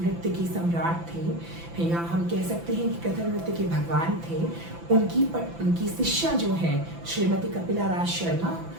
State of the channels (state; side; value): late; left; 5.9 ms